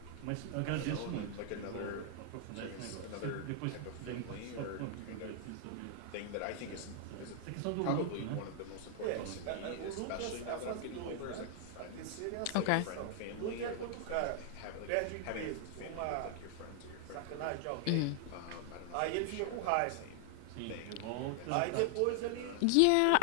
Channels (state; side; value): different; both; correlation 0.00